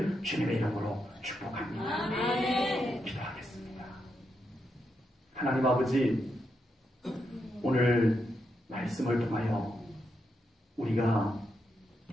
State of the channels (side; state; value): both; normal; correlation 0.83